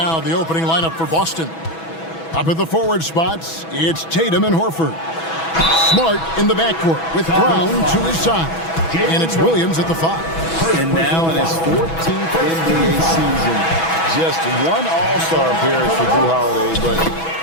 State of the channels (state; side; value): late; right; 6.1 ms